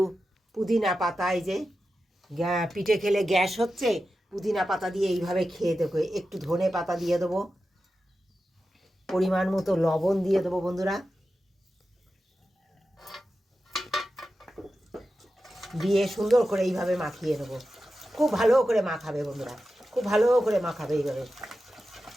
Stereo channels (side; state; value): both; normal; correlation 0.92